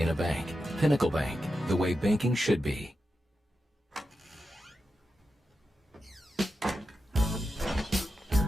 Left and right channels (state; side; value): normal; both; correlation 0.89